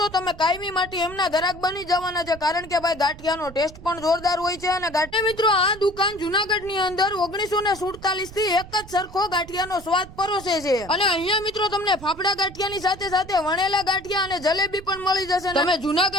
તમે કાયમી માટે એમના ગ્રાહક બની જવાના છે, કારણ કે ભાઈ ગાંઠિયાનો ટેસ્ટ પણ જોરદાર હોય છે। અને ગાંઠિયા મિત્રો આ દુકાન જૂનાગઢની અંદર 1947 થી એક જ સરખો ગાંઠિયાનો સ્વાદ પરોસે છે। અને અહીંયા મિત્રો તમને ફાફડા ગાંઠિયાની સાથે સાથે વણેલા ગાંઠિયા અને જલેબી પણ મળી જશે। તમે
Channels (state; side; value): noise; right; rumble, 17 dB below the sound